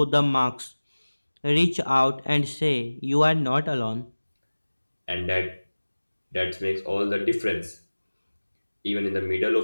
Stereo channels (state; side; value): inverted; both; correlation -1.00